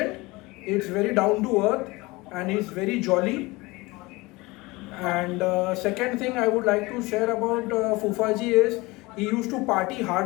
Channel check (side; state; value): right; quieter; 22.8 dB